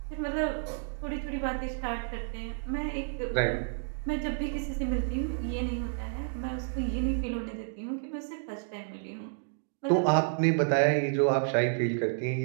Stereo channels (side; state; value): left; silent; digital silence